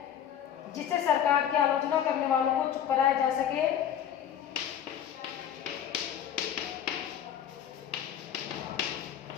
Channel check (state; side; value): quieter; right; 9.5 dB